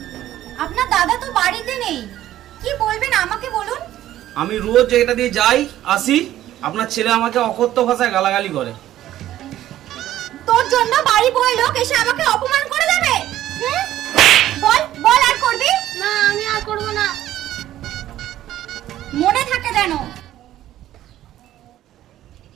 আপনার দাদা তো বাড়িতে নেই, কি বলবেন আমাকে বলুন। আমি রোজ এটা দিয়ে যাই আসি, আপনার ছেলে আমাকে অকথ্য ভাষায় গালাগালি করে। তোর জন্য বাড়ি বয় লোক এসে আমাকে অপমান করে দেবে? বল বল, আর করবি না, আমি আর করবো না। মনে থাকে যেন।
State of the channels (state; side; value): quieter; left; 13.2 dB